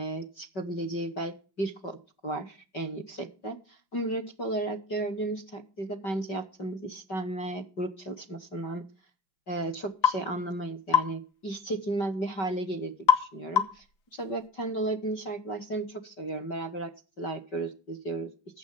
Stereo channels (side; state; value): right; late; 5.2 ms